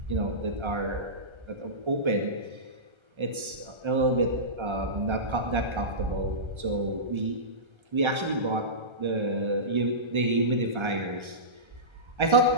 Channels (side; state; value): left; late; 1.3 ms